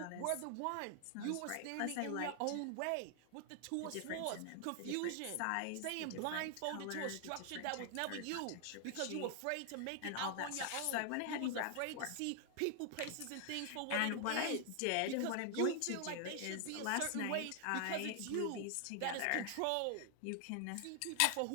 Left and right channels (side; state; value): both; different; correlation 0.00